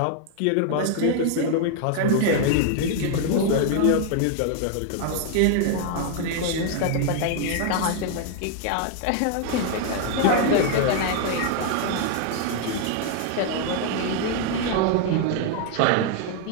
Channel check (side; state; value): both; different; correlation 0.00